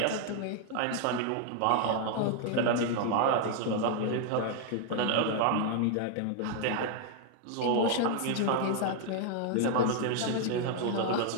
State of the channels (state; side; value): different; both; correlation 0.00